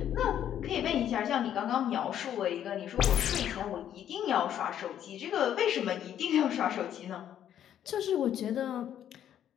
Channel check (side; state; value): right; quieter; 10.3 dB